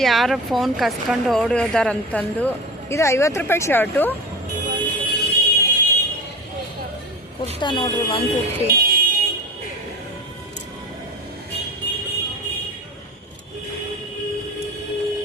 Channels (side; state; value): both; normal; correlation 0.32